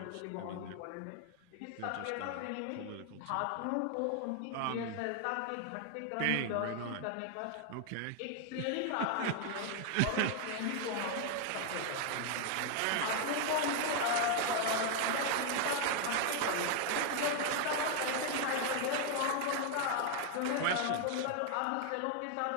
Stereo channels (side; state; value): both; different; correlation 0.00